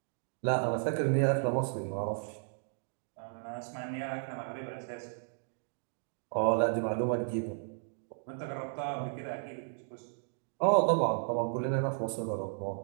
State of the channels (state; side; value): silent; left; digital silence